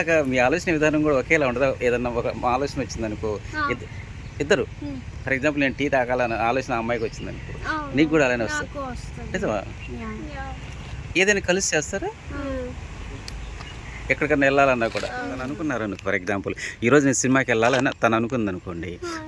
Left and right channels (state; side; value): identical; both; correlation 1.00